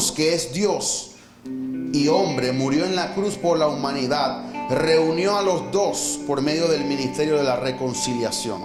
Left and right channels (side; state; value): both; identical; correlation 1.00